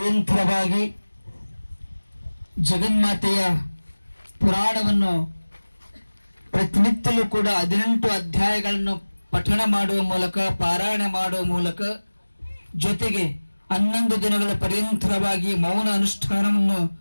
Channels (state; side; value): inverted; both; correlation -1.00